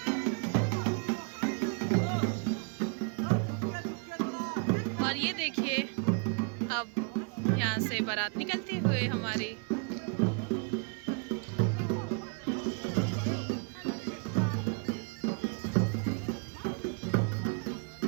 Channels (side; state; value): left; quieter; 38.5 dB